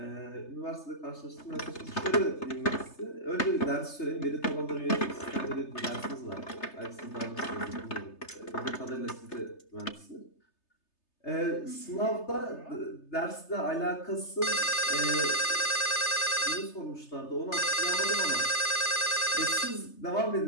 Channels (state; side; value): late; right; 3.3 ms